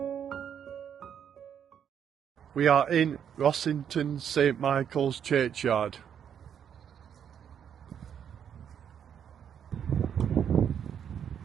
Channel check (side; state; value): left; quieter; 8.5 dB